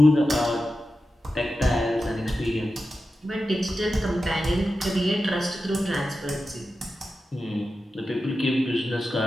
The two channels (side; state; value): both; normal; correlation 0.92